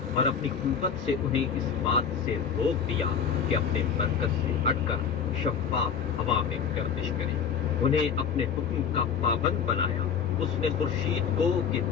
اور اپنی قوت سے انہیں اس بات سے روک دیا کہ اپنے مرکز سے ہٹ کر شفاف ہوا میں گردش کریں۔ انہیں اپنے حکم کا پابند بنایا۔ اس نے خورشید کو کہ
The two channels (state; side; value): quieter; right; 7.0 dB